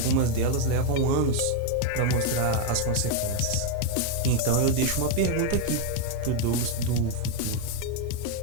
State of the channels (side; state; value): both; different; correlation 0.00